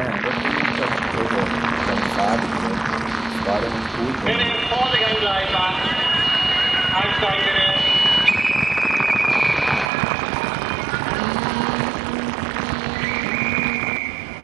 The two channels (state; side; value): drops out; left; at 9.9 s